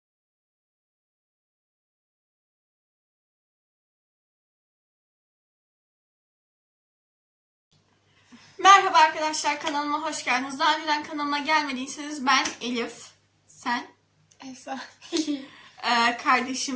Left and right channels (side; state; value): both; identical; correlation 1.00